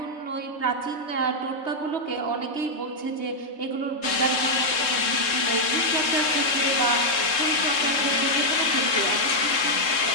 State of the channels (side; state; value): right; late; 3.7 ms